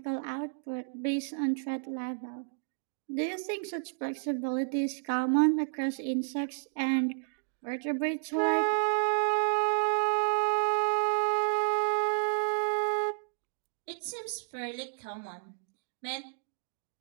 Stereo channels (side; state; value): left; silent; digital silence